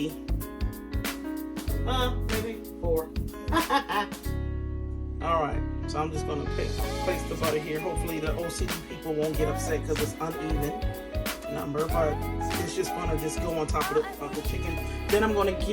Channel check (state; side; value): identical; both; correlation 1.00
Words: maybe 4. All right, so I'm just going to place the butter here. Hopefully the OCD people won't get upset because it's uneven number, but it's just going to just go on top of the chicken. Then I'm going to